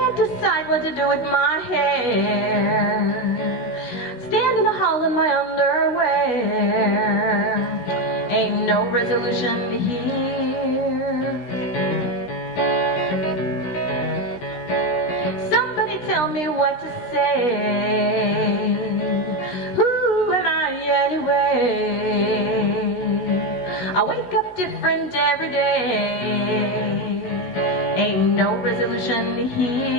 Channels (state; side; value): late; right; 16 ms